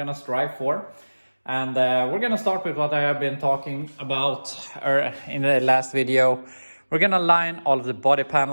strive for. And we're gonna start with what I have been talking about in the last video. We're gonna line all of the body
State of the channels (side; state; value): both; inverted; correlation -1.00